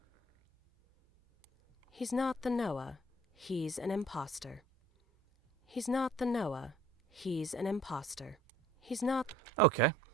He's not the Noah. He's an imposter. He's not the Noah. He's an imposter. He's not... Okay,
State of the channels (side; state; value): both; normal; correlation 0.54